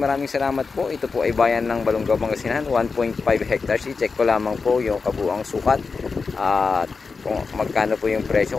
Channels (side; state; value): right; quieter; 4.7 dB